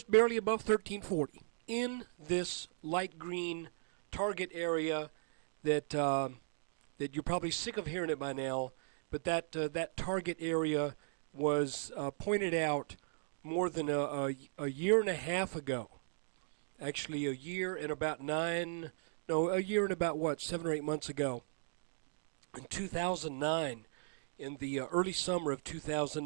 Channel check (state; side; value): silent; left; digital silence